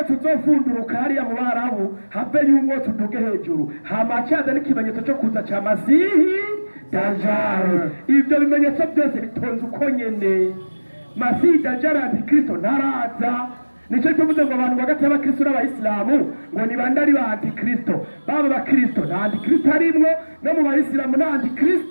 uzofunduruka hariya mu Barabu, have y'umwotsi uduge hejuru, hama cyaza n'ikimenyetso cyo kuza cya Masihi Dajjal. Ibyo bimenyetso byose bitonze uko nyene. Masihi Dajjal Antikristo ntaraza. Nicyo tuvuze ngo abantu bagati y'abakristo n'abayisilamu ngo ni bande ari ba Antikristo. Baba bakristo nta Antikristo arimwo, no mu bayisilamu nta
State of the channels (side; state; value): both; inverted; correlation -1.00